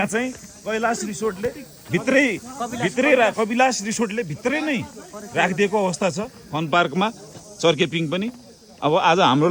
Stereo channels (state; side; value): identical; both; correlation 1.00